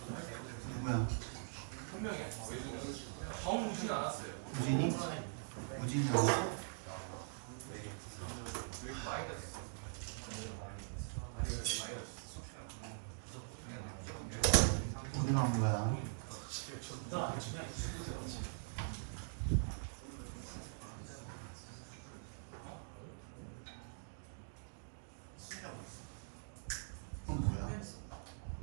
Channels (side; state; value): left; silent; digital silence